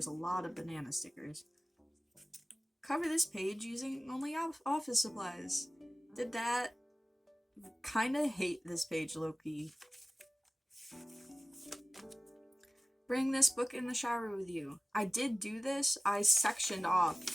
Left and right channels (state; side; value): normal; both; correlation 0.96